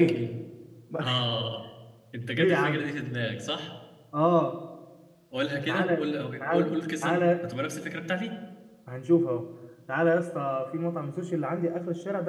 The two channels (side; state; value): both; identical; correlation 1.00